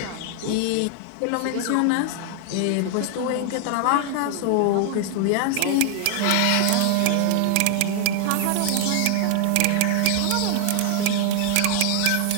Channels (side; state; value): both; different; correlation 0.00